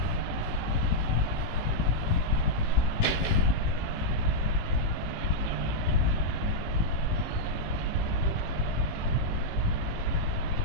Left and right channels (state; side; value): late; right; 18 ms